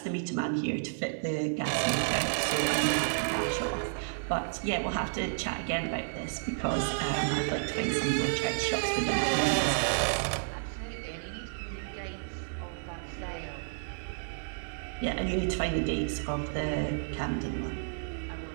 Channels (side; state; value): left; silent; digital silence